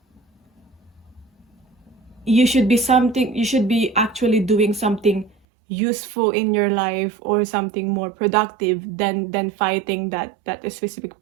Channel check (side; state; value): left; drops out; at 5.4 s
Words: you should be actually doing something useful in your life, or something more productive than fighting that specific